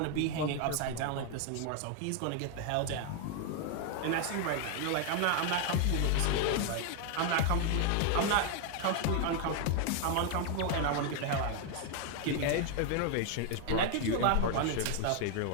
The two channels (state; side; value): different; both; correlation 0.00